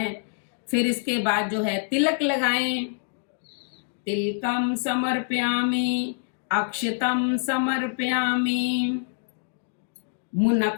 फिर इसके बाद जो है तिलक लगाएं। तिलकम समर्पयामि, अक्षतम समर्पयामि,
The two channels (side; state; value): right; silent; digital silence